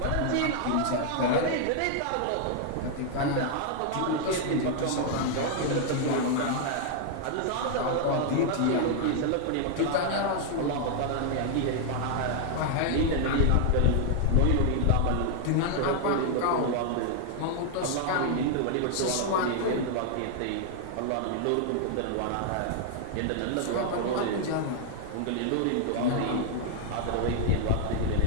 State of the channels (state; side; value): different; both; correlation 0.00